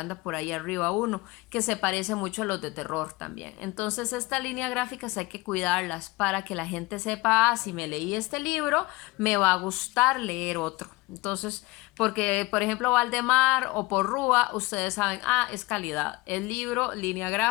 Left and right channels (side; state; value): right; quieter; 22.1 dB